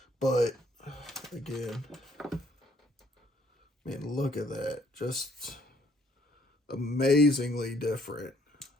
But again, man, look at that. Just amazingly different.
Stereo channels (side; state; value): both; normal; correlation 0.65